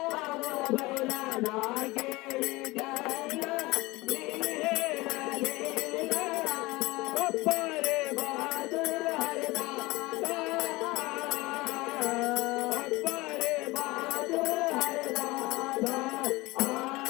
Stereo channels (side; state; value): right; quieter; 21.5 dB